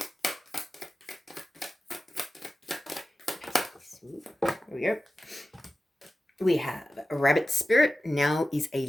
Here we go. We have a Rabbit Spirit. Now is a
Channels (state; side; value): normal; both; correlation 0.94